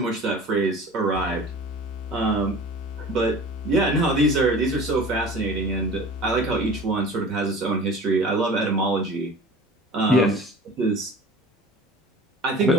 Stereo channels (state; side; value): normal; both; correlation 0.41